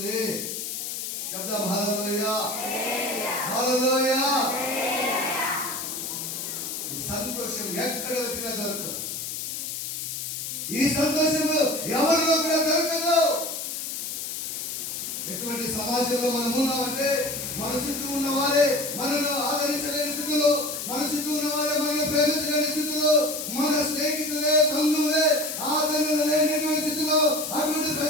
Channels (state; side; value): noise; left; hiss, 5 dB below the sound